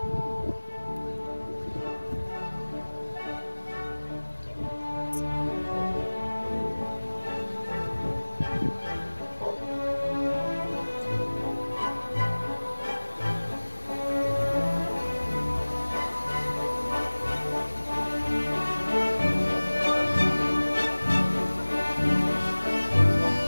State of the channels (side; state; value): both; inverted; correlation -1.00